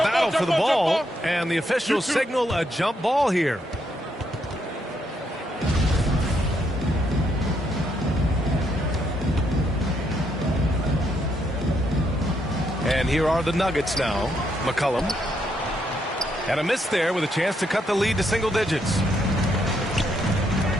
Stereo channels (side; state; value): both; normal; correlation 0.76